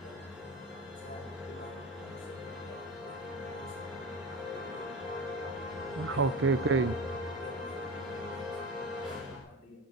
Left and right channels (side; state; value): both; normal; correlation 0.27